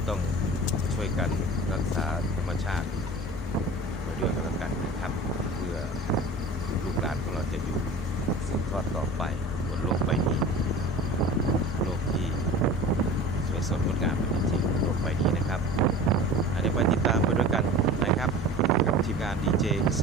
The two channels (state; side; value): normal; both; correlation 0.38